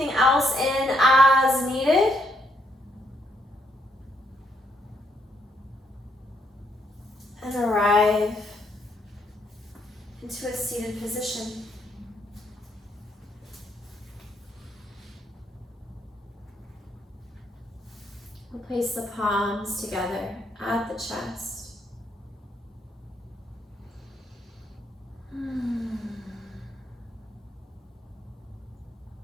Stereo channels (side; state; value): both; normal; correlation 0.74